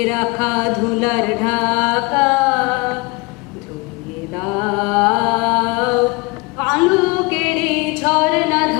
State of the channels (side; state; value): right; quieter; 26.2 dB